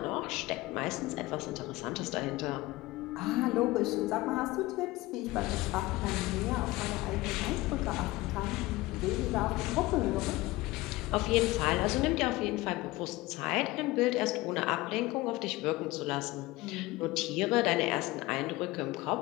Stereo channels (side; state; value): right; quieter; 19.7 dB